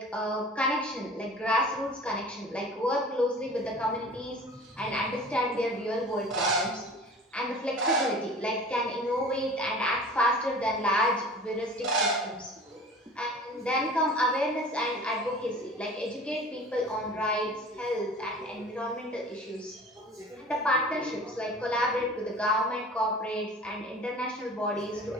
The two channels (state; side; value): normal; both; correlation 0.42